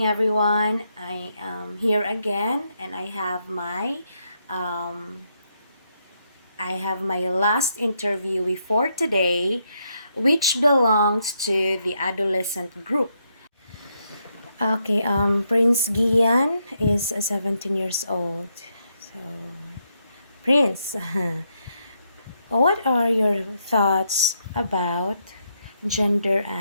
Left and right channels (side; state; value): both; inverted; correlation -0.79